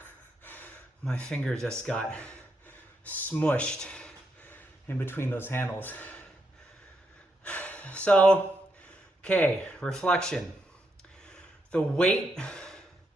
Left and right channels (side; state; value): both; normal; correlation 0.80